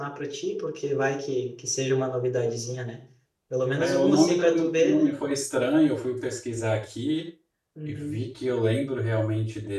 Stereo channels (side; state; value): both; identical; correlation 1.00